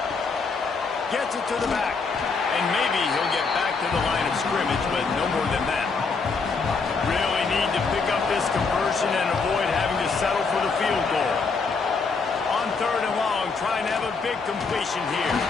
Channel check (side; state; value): right; quieter; 4.7 dB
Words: Gets it to the back. And maybe he'll get back to the line of scrimmage, but no more than that. Really need to pick up this conversion and avoid having to settle for the field goal. On 3rd and long, trying to have a big completion here.